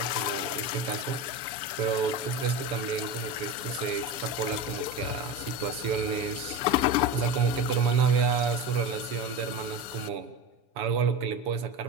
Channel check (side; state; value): left; late; 7.1 ms